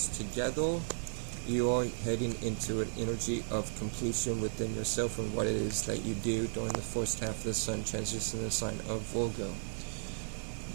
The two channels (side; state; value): left; silent; 55 dB below the other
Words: together, you are heading into an energy of completion within yourself and what it is that you do during the first half of the sun transitioning the sign of Virgo.